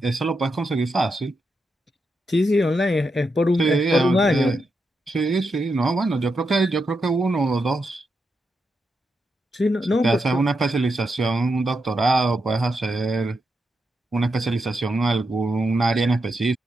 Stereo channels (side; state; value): both; normal; correlation 0.85